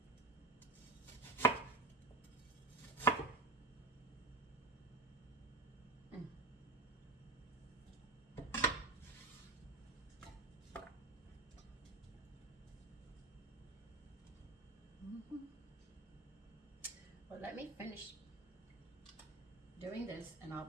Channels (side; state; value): left; quieter; 3.4 dB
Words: Well, let me finish doing this and I'll